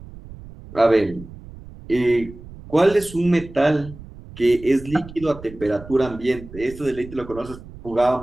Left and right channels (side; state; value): right; noise; rumble, 16 dB below the sound